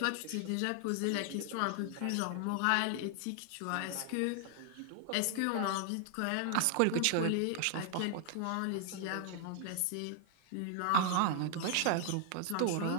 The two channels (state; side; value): different; both; correlation 0.00